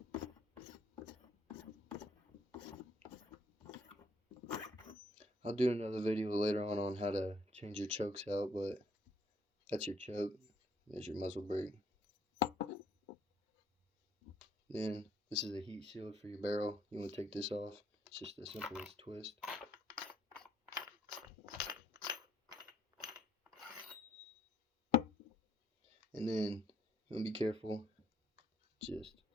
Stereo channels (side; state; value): both; normal; correlation 0.67